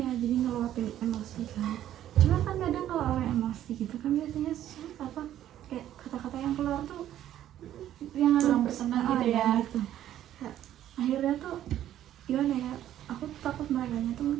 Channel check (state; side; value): quieter; left; 11.9 dB